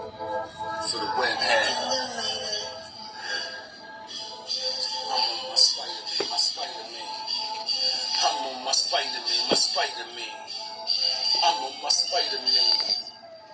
for the web hat. I'm on my Spider-Man, my Spider-Man. I'm on my Spider-Man, my Spider-Man. I'm on my Spider-Man.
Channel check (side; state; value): both; identical; correlation 1.00